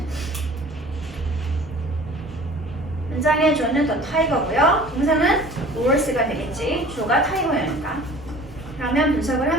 문장의 주어는 더 타이거고요. 동사는 horse가 되겠지. 주어가 타이거니까. 그러면 분석을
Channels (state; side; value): normal; both; correlation 0.46